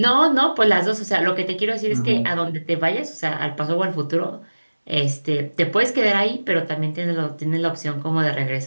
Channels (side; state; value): both; inverted; correlation -1.00